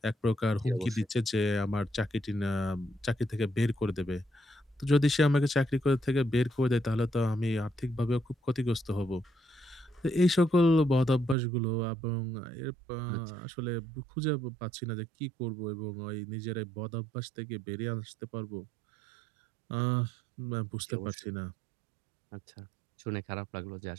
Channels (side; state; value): left; drops out; at 11.4 s